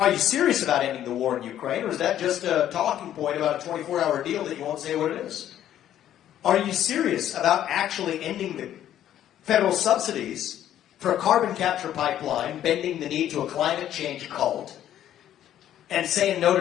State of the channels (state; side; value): quieter; right; 11.4 dB